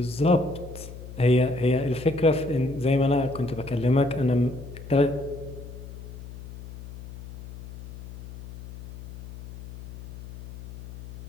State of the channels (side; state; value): left; noise; hum, 14 dB below the sound